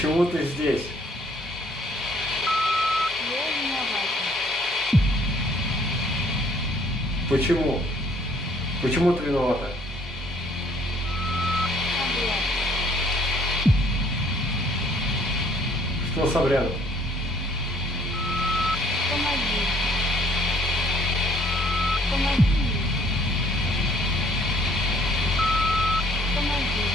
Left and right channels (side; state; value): both; normal; correlation 0.61